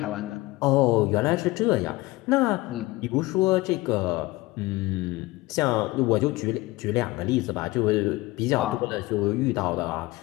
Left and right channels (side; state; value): right; quieter; 20.3 dB